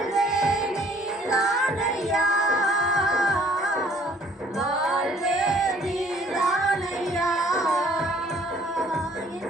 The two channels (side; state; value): both; normal; correlation 0.58